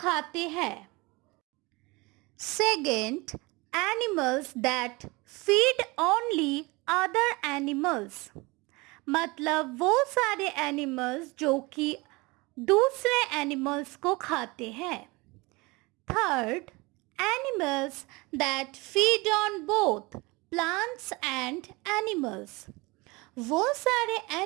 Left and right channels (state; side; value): quieter; left; 24.6 dB